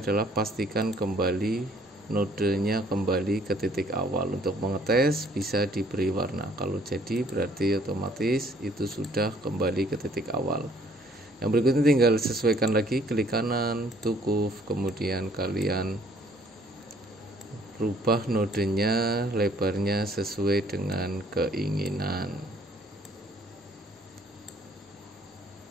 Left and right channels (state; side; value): normal; both; correlation 0.61